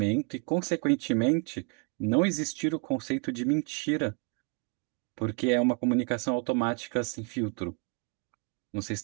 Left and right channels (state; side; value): quieter; left; 33.7 dB